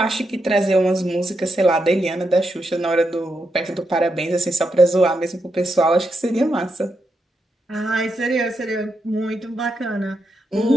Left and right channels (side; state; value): both; normal; correlation 0.83